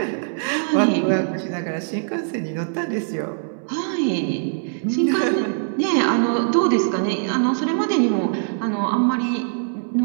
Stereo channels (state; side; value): silent; left; 64 dB below the other